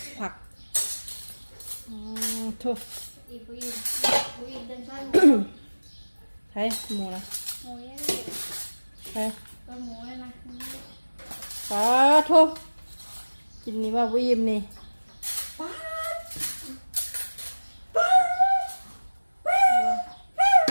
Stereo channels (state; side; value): inverted; both; correlation -1.00